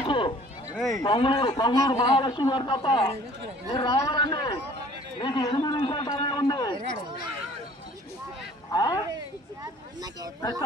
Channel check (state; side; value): normal; both; correlation 0.52